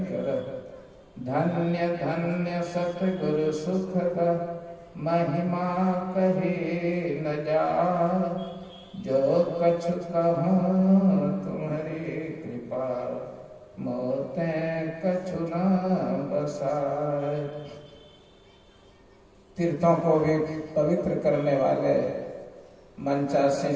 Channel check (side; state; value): both; identical; correlation 1.00